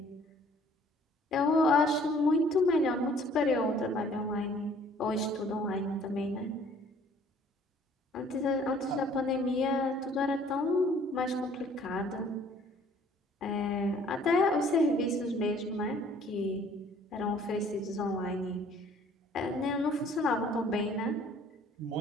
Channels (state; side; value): normal; both; correlation 0.57